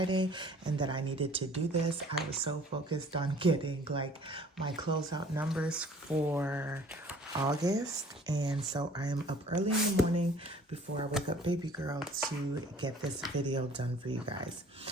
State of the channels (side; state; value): both; normal; correlation 0.52